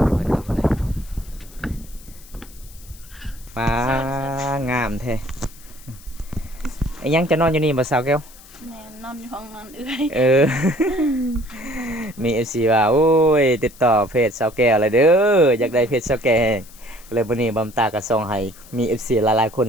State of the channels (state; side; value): noise; left; hiss, 22 dB below the sound